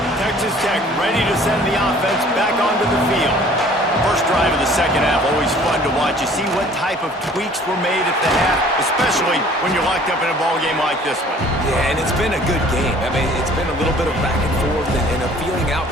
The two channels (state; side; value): normal; both; correlation 0.52